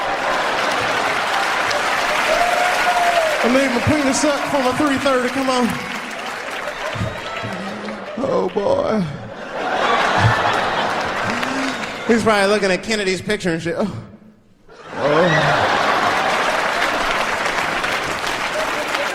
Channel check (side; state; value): both; identical; correlation 1.00